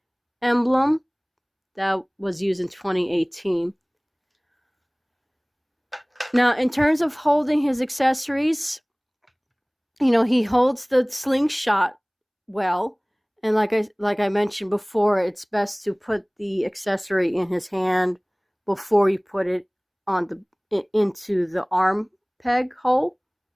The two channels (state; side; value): identical; both; correlation 1.00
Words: emblem that was used in 2018. Now, in terms of holding his accessories, he holds the slingshot well. And like I mentioned before, it's best to put the accessory in his hand before you put it into the arm peg hole.